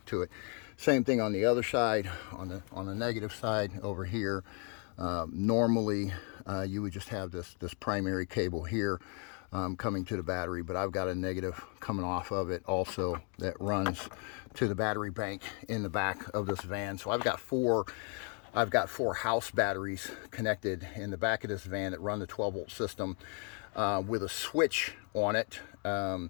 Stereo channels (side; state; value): right; quieter; 38.7 dB